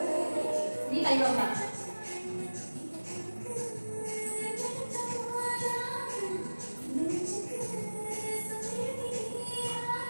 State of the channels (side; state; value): both; inverted; correlation -1.00